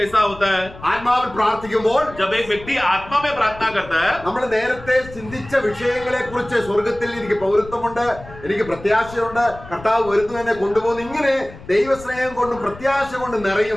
होता है? ആത്മാവിൽ പ്രാർത്ഥിക്കുമ്പോൾ जब एक व्यक्ति आत्मा में प्रार्थना करता है, നമ്മൾ നേരത്തെ ചിന്തിച്ച വിഷയങ്ങളെ കുറിച്ച് സ്വർഗത്തിൽ എനിക്ക് പൗരത്വമുണ്ട്, എനിക്ക് പ്രത്യാശയുണ്ട്, കർത്താവ് വരുന്നു എന്നെ കൊണ്ടുപോകുന്നു, ഇങ്ങനെ ദൈവസ്നേഹം കൊണ്ടും പ്രത്യാശ കൊണ്ടും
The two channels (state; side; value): noise; left; rumble, 17 dB below the sound